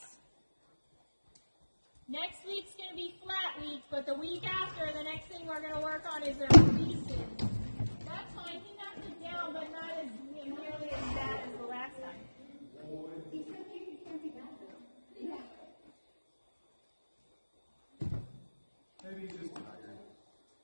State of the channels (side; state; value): both; inverted; correlation -1.00